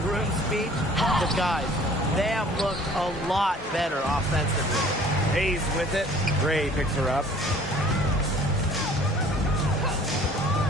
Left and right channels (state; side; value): normal; both; correlation 0.52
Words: speech. But guys, they have looked a lot better offensively. Hayes with it. Gray picks her up.